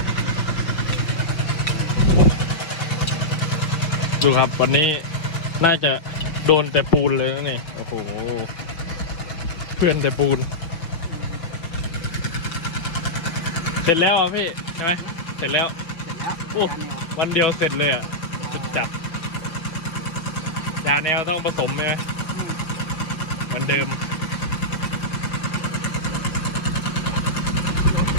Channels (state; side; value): late; right; 5.6 ms